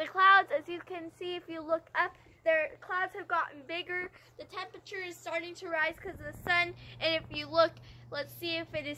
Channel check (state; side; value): identical; both; correlation 1.00